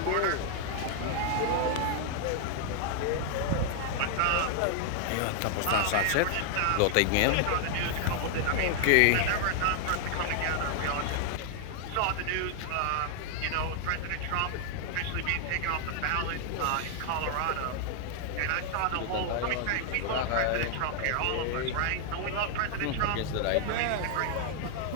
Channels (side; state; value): both; different; correlation 0.00